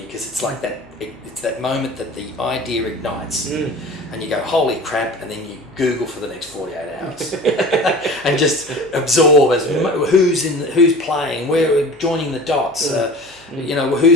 because it's like that. It's that moment that the idea ignites, and you go, "Holy crap!" and then you Google for the next 48 hours, and just absorb as who's playing, where joining the dots.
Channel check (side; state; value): both; normal; correlation 0.39